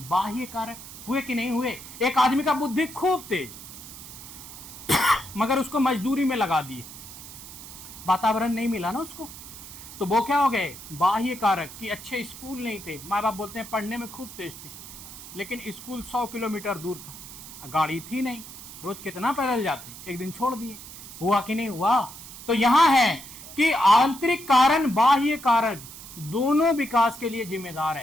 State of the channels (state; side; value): noise; right; hiss, 14 dB below the sound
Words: कारक। हुए कि नहीं हुए? एक आदमी का बुद्धि खूब तेज, मगर उसको मजदूरी में लगा दिए, वातावरण नहीं मिला ना उसको, तो वो क्या हो गए? बाह्य कारक। कि अच्छे स्कूल नहीं थे, माँ बाप बोलते हैं पढ़ने में खूब तेज थे, लेकिन स्कूल 100 किलोमीटर दूर था, गाड़ी थी नहीं, रोज कितना पैदल जाते, एक दिन छोड़ दिए। हुआ कि नहीं हुआ? तो यहां है कि आंतरिक कारण बाह्य कारण दोनों विकास के लिए जिम्मेदार